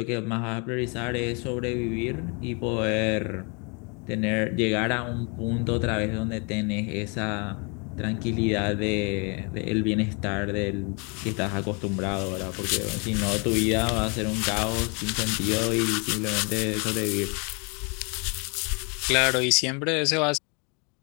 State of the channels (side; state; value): right; quieter; 33.5 dB